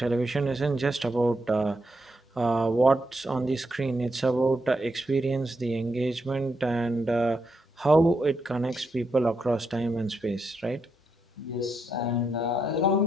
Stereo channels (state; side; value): normal; both; correlation 0.81